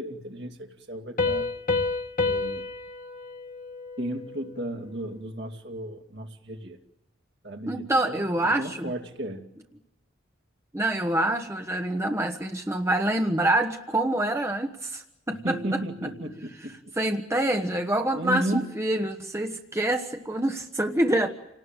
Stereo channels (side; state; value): both; normal; correlation 0.60